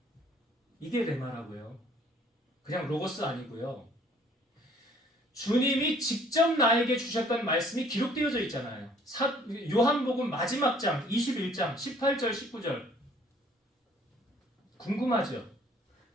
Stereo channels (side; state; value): both; normal; correlation 0.58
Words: 이게 레마라고요. 그냥 로고스 아니고요. 주님이 직접 나에게 주셨던 말씀이 기록되어져 있잖아요. 요한복음 마지막 장 21장 18절 19절 궁금하죠?